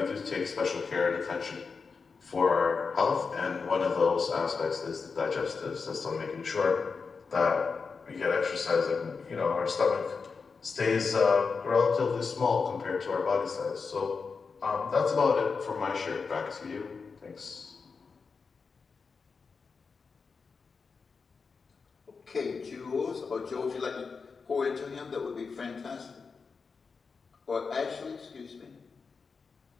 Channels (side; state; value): right; quieter; 5.0 dB